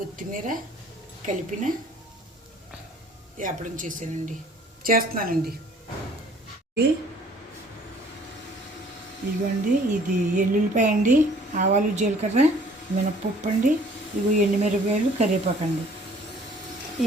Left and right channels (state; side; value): normal; both; correlation 0.55